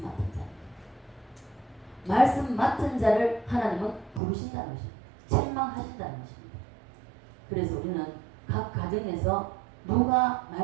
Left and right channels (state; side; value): drops out; left; at 4.2 s